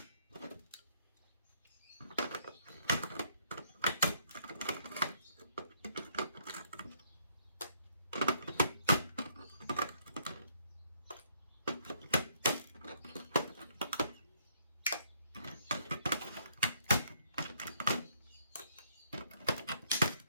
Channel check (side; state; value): both; inverted; correlation -0.68